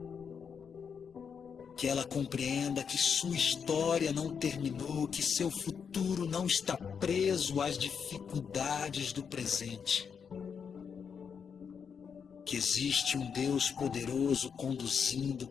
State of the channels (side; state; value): right; quieter; 6.7 dB